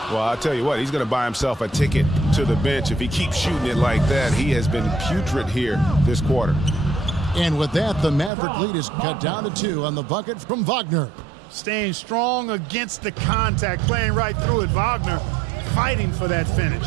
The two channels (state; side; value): drops out; left; at 8.3 s